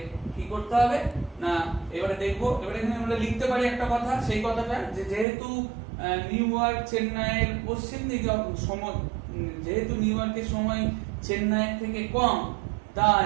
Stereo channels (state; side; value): drops out; left; at 5.2 s